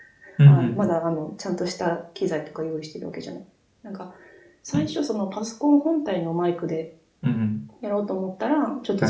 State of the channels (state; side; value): identical; both; correlation 1.00